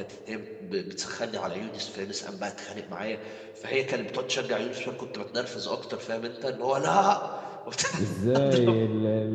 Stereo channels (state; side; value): identical; both; correlation 1.00